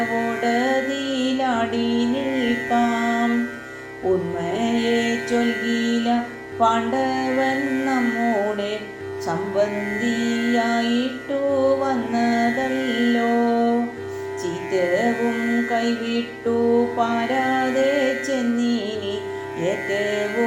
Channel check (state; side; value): identical; both; correlation 1.00